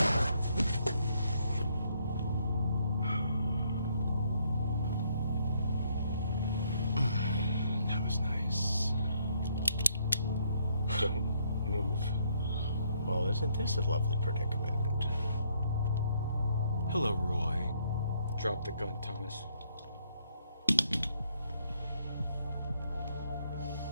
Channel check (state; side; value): inverted; both; correlation -0.68